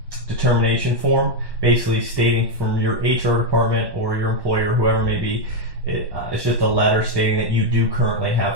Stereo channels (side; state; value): left; late; 1.1 ms